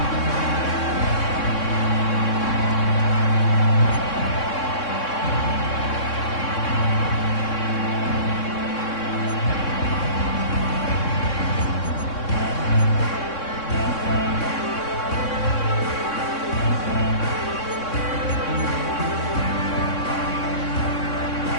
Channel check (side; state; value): right; late; 3.6 ms